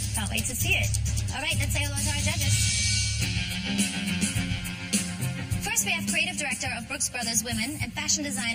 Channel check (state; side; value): identical; both; correlation 1.00